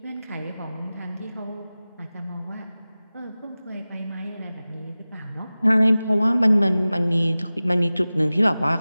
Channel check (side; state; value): both; inverted; correlation -0.97